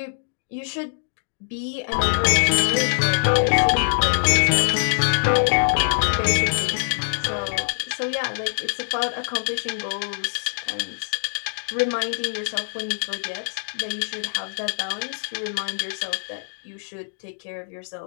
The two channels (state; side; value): silent; right; digital silence